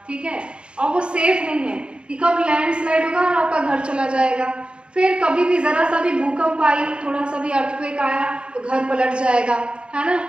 ठीक है, और वो सेफ नहीं है कि कब लैंडस्लाइड होगा और आपका घर चला जाएगा, फिर कभी भी जरा सा भी भूकंप आई, थोड़ा सा भी अर्थक्वेक आया तो घर पलट जाएगा, है ना।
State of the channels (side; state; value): left; late; 0.056 ms